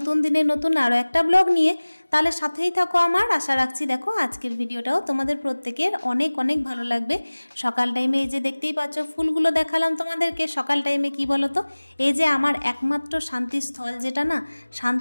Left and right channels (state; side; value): inverted; both; correlation -1.00